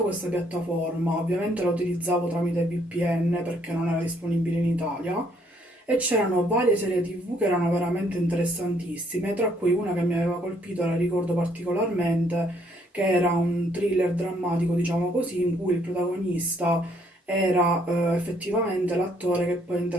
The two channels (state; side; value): normal; both; correlation 0.67